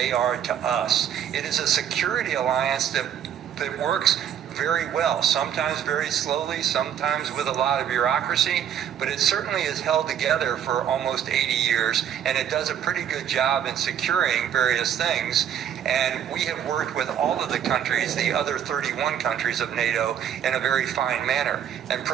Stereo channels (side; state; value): left; quieter; 9.4 dB